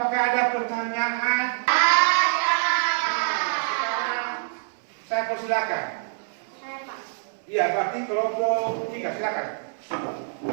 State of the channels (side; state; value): left; silent; 62 dB below the other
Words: ada pertanyaan? Sekarang saya silakan. Saya Pak. Iya, berarti kelompok 3 silakan.